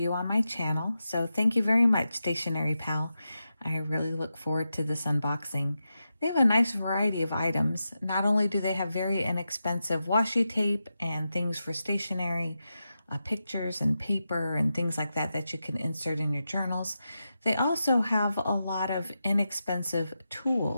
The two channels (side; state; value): both; inverted; correlation -0.90